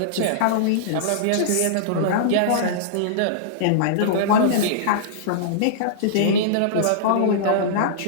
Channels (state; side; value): different; both; correlation -0.03